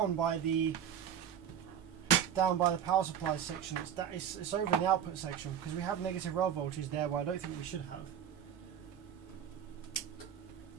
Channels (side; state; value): left; quieter; 9.0 dB